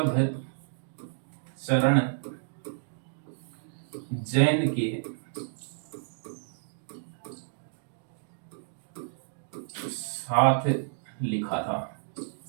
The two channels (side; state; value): left; silent; digital silence